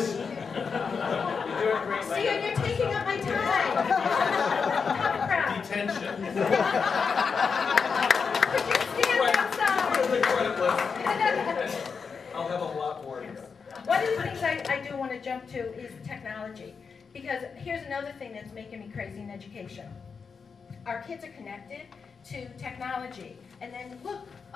see, you're taking up my time. Tough crowd. Detention. Could you stand outside? I'll have a lot more. One of the things I do want to jump to is technology. Because here's another thing that's making me crazy in education. Our kids are connected to technology. And then look,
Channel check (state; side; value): quieter; right; 5.6 dB